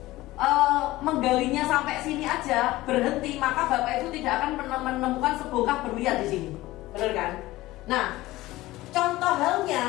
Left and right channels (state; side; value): quieter; right; 17.8 dB